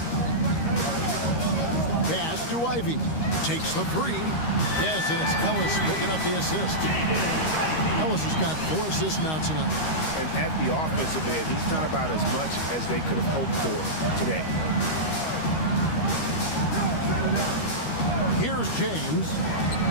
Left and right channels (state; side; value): late; right; 13 ms